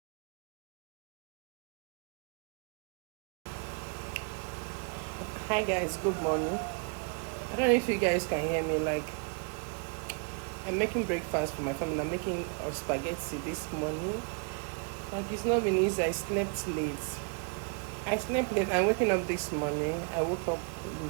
Hi guys, good morning. I don't know if you guys can hear me. Like, I'm making breakfast for my family. I'm making spaghetti this morning. Like, it's not been easy. I slept late. I'm waking up this morning. I woke up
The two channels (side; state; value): left; quieter; 38.4 dB